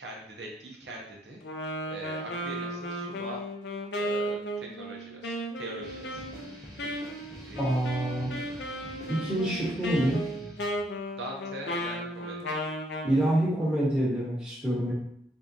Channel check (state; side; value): normal; both; correlation 0.69